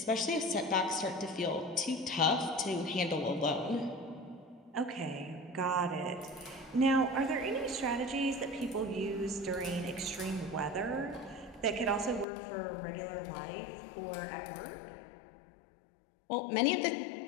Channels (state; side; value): drops out; right; at 12.2 s